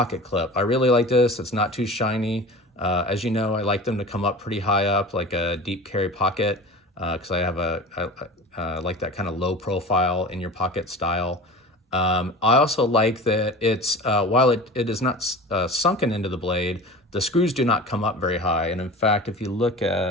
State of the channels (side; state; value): both; normal; correlation 0.36